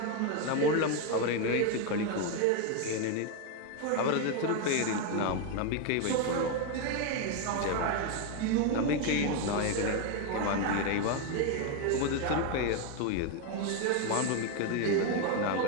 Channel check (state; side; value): different; both; correlation 0.01